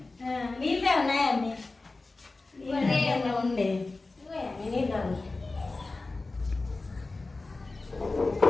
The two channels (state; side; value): quieter; right; 3.4 dB